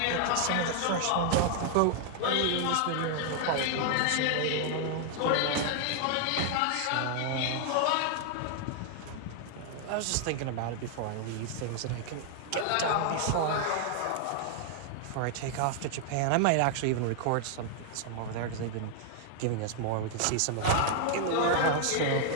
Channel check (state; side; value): different; both; correlation 0.00